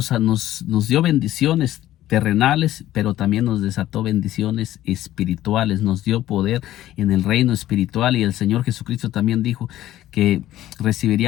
dio bendiciones terrenales, pero también nos desató bendiciones espirituales, nos dio poder en el reino espiritual, y el Señor Jesucristo también dijo que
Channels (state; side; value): quieter; right; 13.9 dB